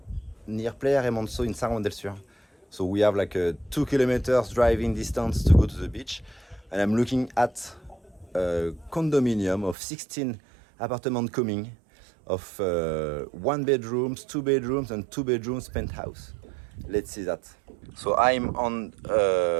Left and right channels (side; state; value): left; drops out; at 9.8 s